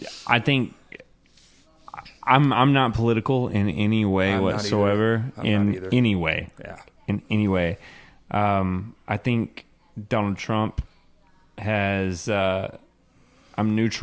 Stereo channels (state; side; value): identical; both; correlation 1.00